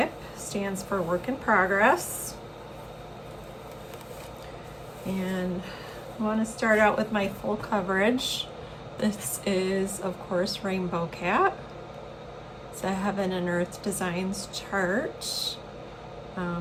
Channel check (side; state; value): both; identical; correlation 1.00